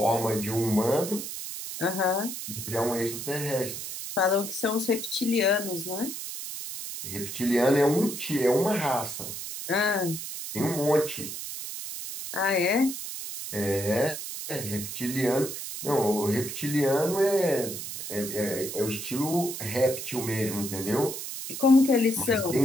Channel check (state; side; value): noise; right; hiss, 7 dB below the sound